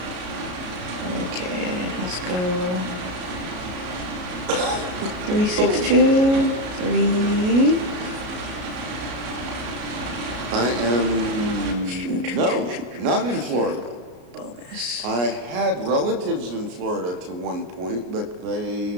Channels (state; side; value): late; left; 34 ms